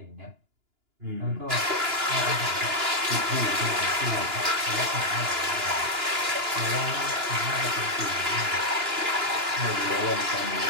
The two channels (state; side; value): late; left; 2.9 ms